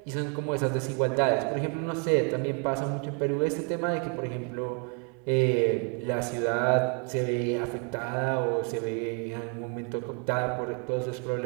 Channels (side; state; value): left; quieter; 38.9 dB